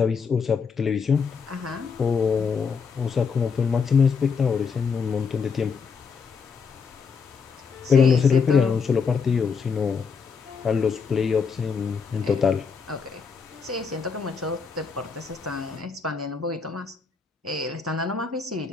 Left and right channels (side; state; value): right; quieter; 5.6 dB